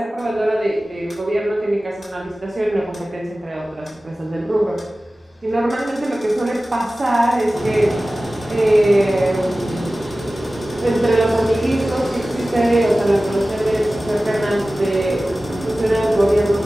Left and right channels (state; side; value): normal; both; correlation 0.96